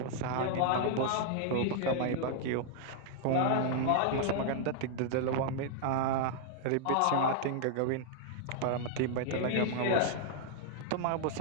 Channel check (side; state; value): both; different; correlation -0.01